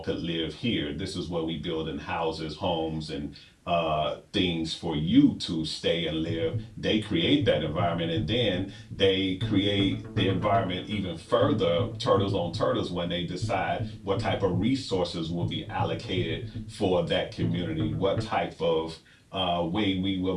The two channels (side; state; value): both; identical; correlation 1.00